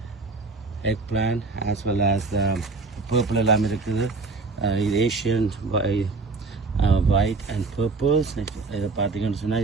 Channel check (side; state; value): left; quieter; 3.9 dB